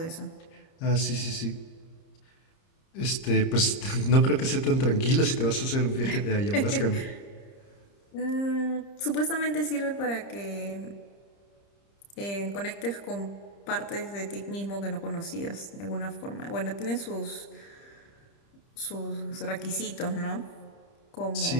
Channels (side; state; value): right; late; 30 ms